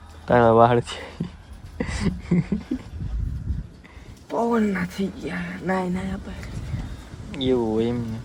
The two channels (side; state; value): both; identical; correlation 1.00